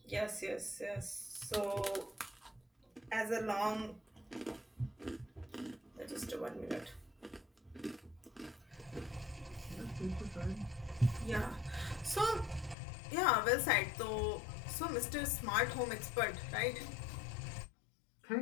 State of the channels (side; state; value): right; drops out; at 12.8 s